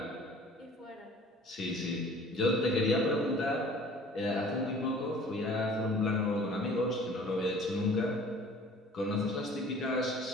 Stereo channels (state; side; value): normal; both; correlation 0.49